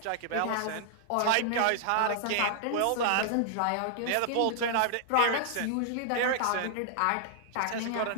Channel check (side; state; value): both; different; correlation -0.01